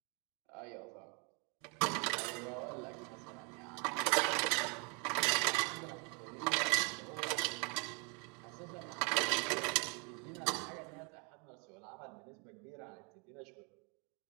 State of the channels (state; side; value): quieter; left; 34.0 dB